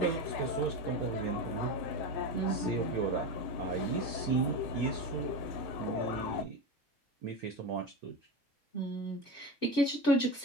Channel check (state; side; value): normal; both; correlation 0.23